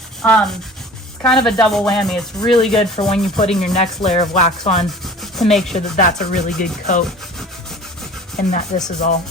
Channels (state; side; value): normal; both; correlation 0.43